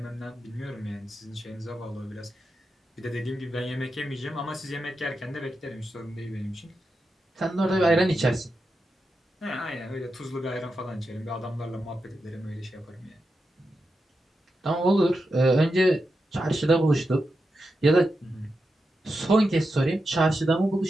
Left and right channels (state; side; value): normal; both; correlation 0.88